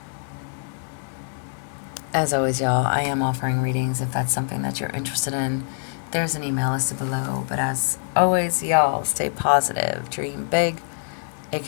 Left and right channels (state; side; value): silent; right; digital silence